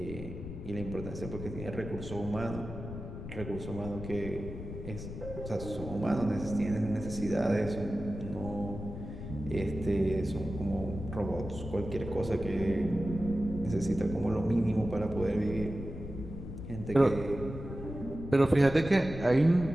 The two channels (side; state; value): left; noise; rumble, 9 dB below the sound